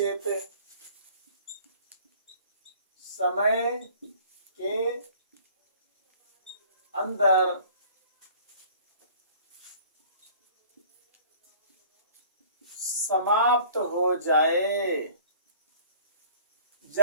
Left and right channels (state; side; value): inverted; both; correlation -0.51